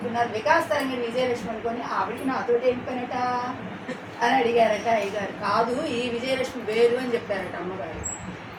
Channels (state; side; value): identical; both; correlation 1.00